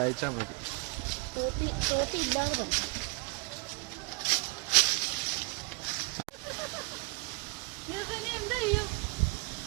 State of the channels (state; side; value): quieter; left; 28.5 dB